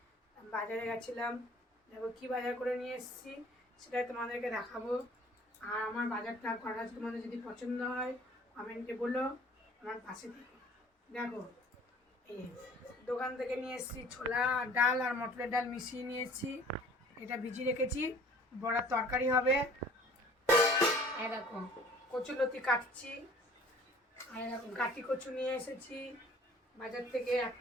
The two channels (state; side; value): normal; both; correlation 0.51